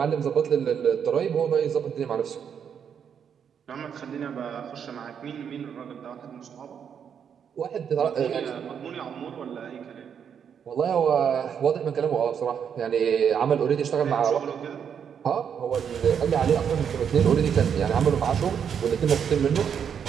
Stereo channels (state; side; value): quieter; left; 7.7 dB